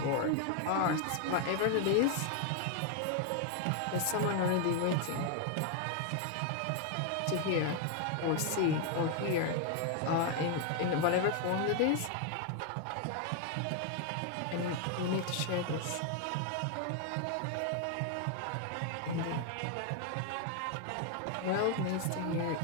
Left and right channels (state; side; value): different; both; correlation 0.01